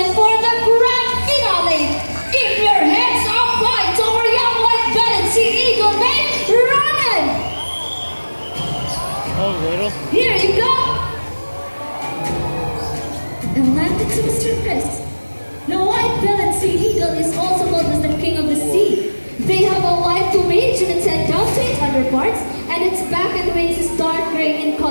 for the grand finale, keep your hands up high to our young white-bellied sea eagle named Ronan. Here you go. And landed to Mr. Chris. The white-bellied sea eagle is also called as the king of the sea. They have a white plumage and its head down to its underparts, and its back and wings is dark gray in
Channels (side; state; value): both; inverted; correlation -1.00